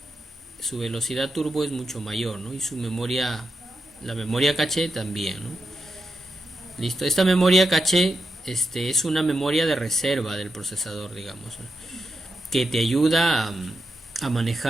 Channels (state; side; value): normal; both; correlation 0.86